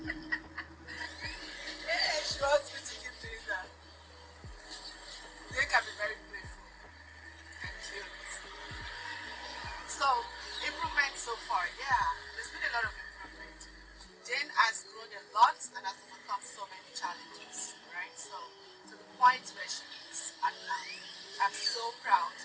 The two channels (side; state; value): both; identical; correlation 1.00